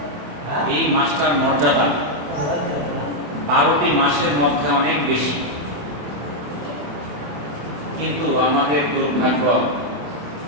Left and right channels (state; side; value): late; left; 27 ms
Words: এই মাসটার মর্যাদা 12টি মাসের মধ্যে অনেক বেশি, কিন্তু আমাদের দুর্ভাগ্য,